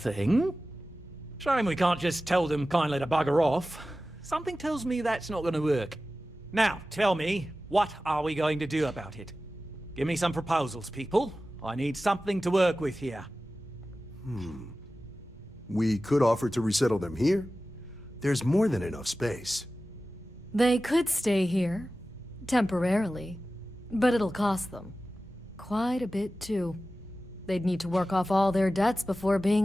Shame we can't just tell them kindly to bugger off. Something tells me that's not going to work. Now, tell me, what are we going to do about it? Give me some proposals, people. I need something to work with here. We could offer to resettle them here. There's more than enough space. They could stay here, temporarily, but it'll cost them. Quite a bit, too. They'd need to work off all their debts before being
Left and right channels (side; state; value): both; normal; correlation 0.95